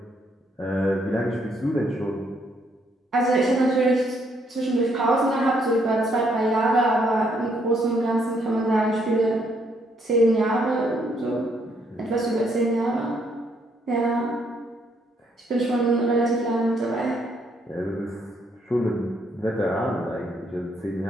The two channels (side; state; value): both; normal; correlation 0.71